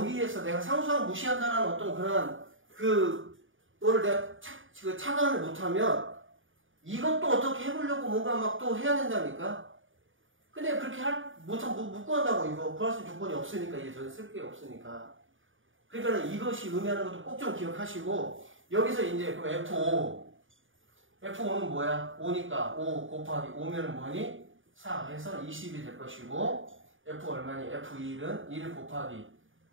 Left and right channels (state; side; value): late; left; 0.57 ms